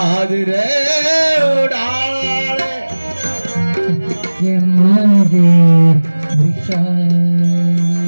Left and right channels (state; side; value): inverted; both; correlation -1.00